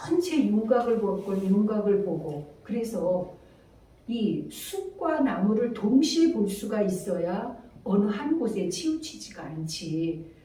윤곽을 볼 건 윤곽을 보고 그래서 이 숲과 나무를 동시에 볼 수가 있어야 어느 한 곳에 치우치지가 않지.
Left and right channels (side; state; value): both; identical; correlation 1.00